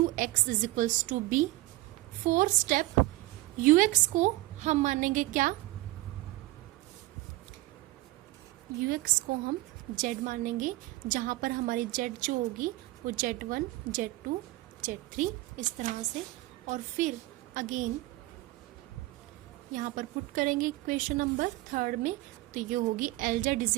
is equals to B. Fourth step ux को हम मानेंगे क्या, ux को हम z मानेंगे, जहां पर हमारी z जो होगी वो z1, z2, z3 इस तरह से, और फिर अगेन यहाँ पर पुट करेंगे इक्वेशन नंबर थर्ड में, तो ये होगी Lz is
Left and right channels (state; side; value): quieter; left; 18.7 dB